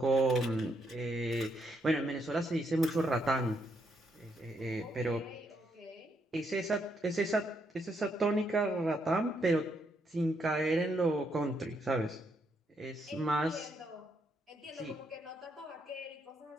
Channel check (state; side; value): normal; both; correlation 0.77